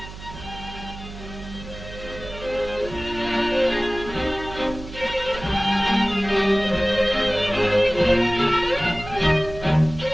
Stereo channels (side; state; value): right; noise; hum, 13 dB below the sound